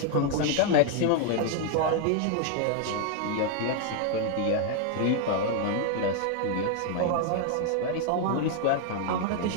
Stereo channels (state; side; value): different; both; correlation 0.00